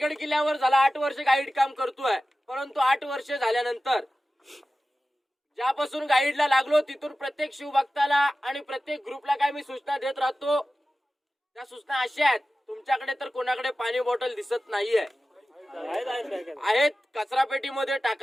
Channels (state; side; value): normal; both; correlation 0.95